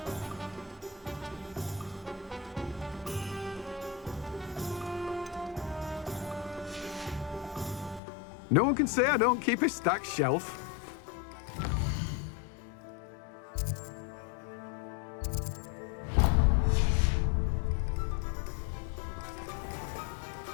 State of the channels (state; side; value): drops out; right; at 8.0 s